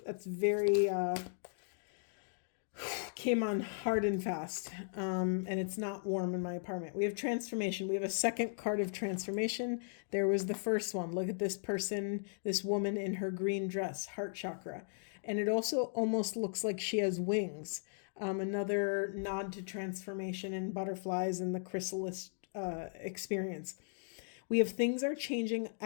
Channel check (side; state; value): right; silent; digital silence